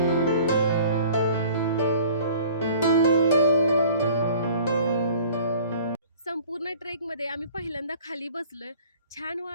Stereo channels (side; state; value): both; inverted; correlation -0.49